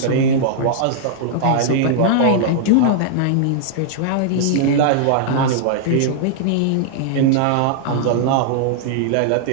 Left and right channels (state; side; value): different; both; correlation -0.01